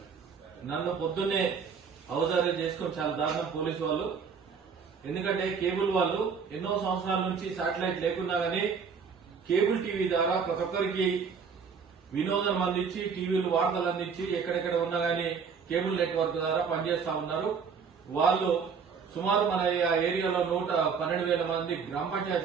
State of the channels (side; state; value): left; quieter; 6.0 dB